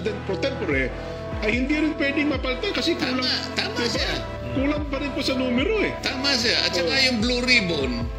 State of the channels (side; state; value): both; identical; correlation 1.00